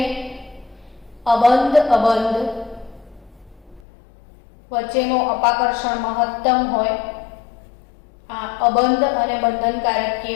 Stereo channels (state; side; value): drops out; right; at 3.8 s